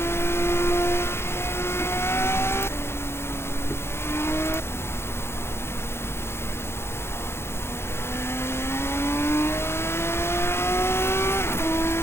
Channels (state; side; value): late; right; 0.12 ms